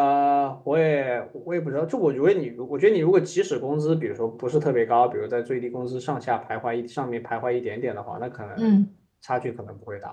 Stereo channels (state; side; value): identical; both; correlation 1.00